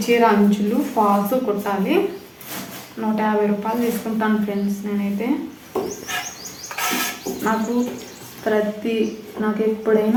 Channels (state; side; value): identical; both; correlation 1.00